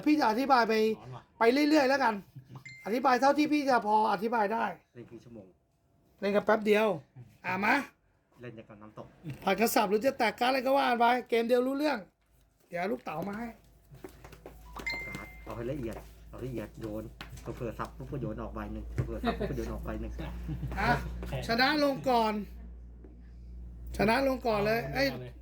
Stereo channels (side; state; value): both; identical; correlation 1.00